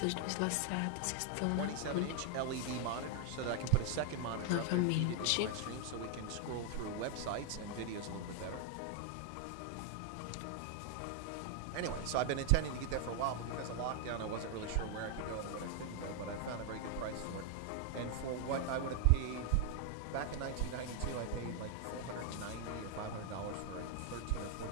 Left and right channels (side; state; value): both; different; correlation 0.00